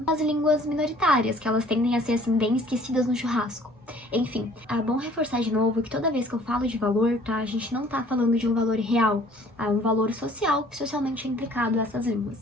as línguas minoritárias, que elas tendem a ser, assim, bem esquecidas no churrasco. Enfim, é bom reforçar de novo que toda vez que eu falo de valor, tá, a gente não tá falando de um valor real, é um valor social que socialmente é implicado a essas línguas.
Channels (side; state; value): both; normal; correlation 0.55